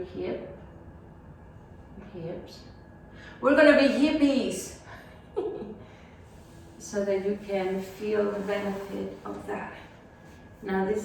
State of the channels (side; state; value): both; identical; correlation 1.00